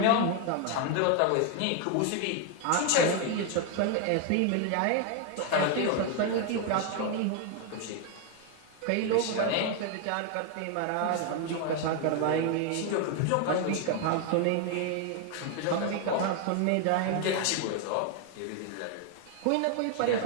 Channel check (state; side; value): different; both; correlation 0.01